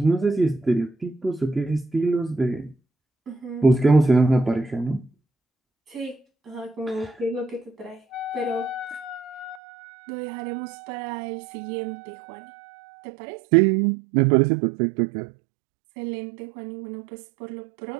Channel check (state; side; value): drops out; left; at 9.6 s